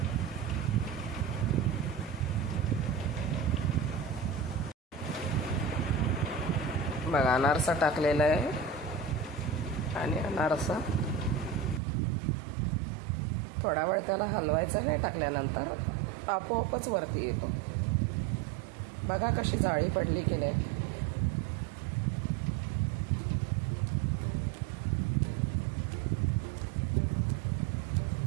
बघा अनारसा टाकलेला आहे आणि अनारसा थोडा वेळ त्याला हलवायचा नाही. टाकल्यानंतर आपोआपच वरती येतो. बघा कशी जाळी पडली की नाही.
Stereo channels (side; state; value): left; drops out; at 11.8 s